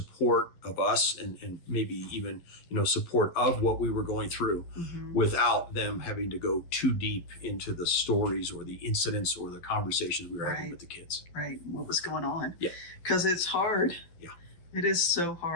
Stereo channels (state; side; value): late; right; 12 ms